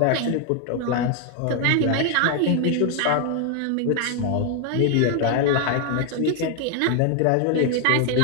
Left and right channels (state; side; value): different; both; correlation 0.01